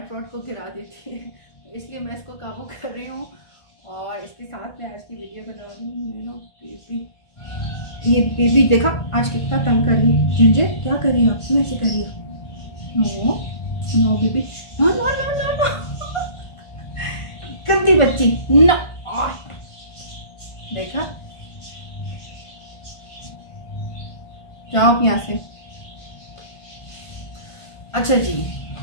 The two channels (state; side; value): late; right; 1.5 ms